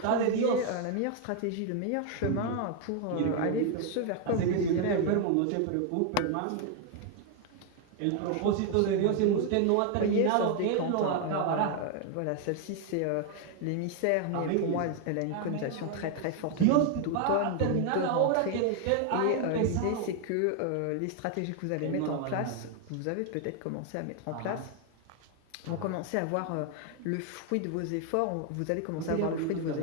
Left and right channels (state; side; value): different; both; correlation 0.01